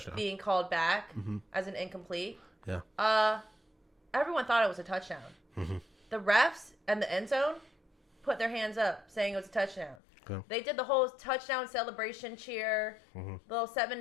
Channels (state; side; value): drops out; right; at 10.0 s